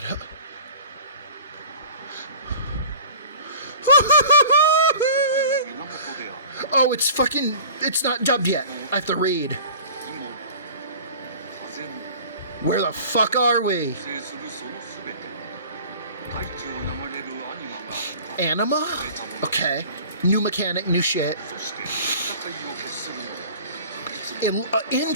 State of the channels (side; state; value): both; inverted; correlation -0.42